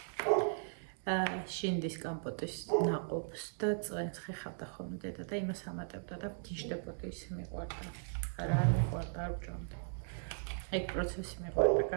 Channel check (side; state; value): left; silent; digital silence